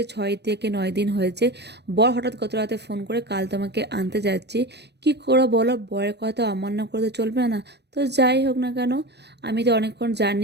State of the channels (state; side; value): late; left; 0.49 ms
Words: 6 থেকে 9 দিন হয়েছে। বর হঠাৎ গত রাতে ফোন করে কাল তোমাকে আনতে যাচ্ছি। কি করো বলো, বরের কথা অমান্য করে তো চলবে না। তো যাই হোক না কেন, আমি তো অনেকক্ষণ